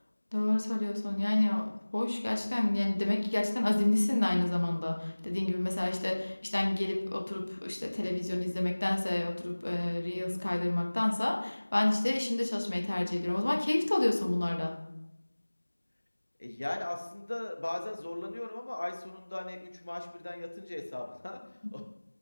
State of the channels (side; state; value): both; inverted; correlation -1.00